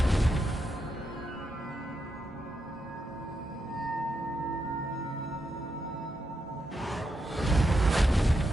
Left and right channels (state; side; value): normal; both; correlation 0.84